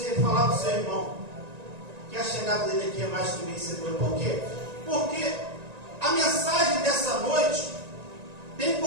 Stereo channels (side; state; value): left; late; 1.9 ms